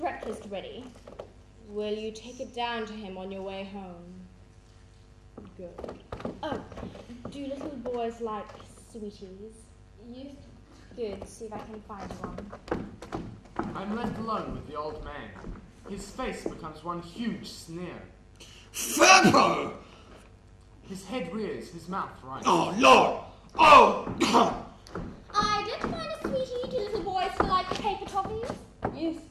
ready. Will you take it down to him on your way home? Good. Oh, do little boys like sweeties? Yes. Good, see if I can find one. I'm left alone with the old man. His face becomes one huge sneer. Furo! His head rears, his mouth rises. Oh, Lord! Oh! I did find a sweetie. Do little boys still like paper toffees? Yes.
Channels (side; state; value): both; identical; correlation 1.00